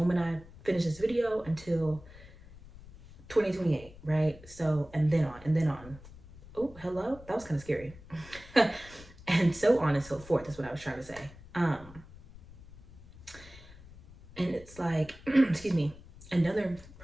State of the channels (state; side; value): noise; left; rumble, 19 dB below the sound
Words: I finish this video until 2028, right? So, and then on. Oh, hello? That was kind of scary. And so on and so forth is what I was trying to say. And it's like, excuse me, another